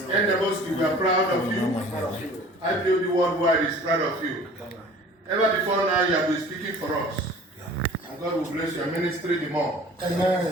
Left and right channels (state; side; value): normal; both; correlation 0.46